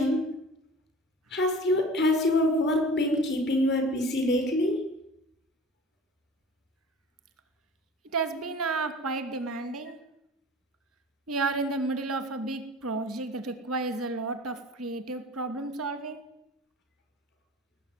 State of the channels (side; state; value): both; normal; correlation 0.41